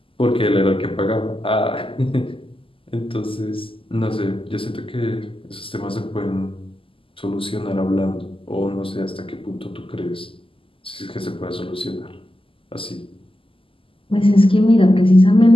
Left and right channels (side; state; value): right; late; 0.26 ms